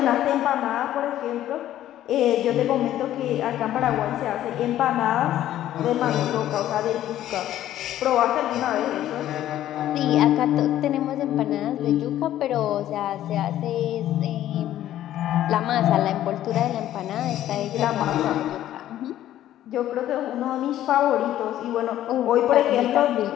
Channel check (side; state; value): right; quieter; 12.7 dB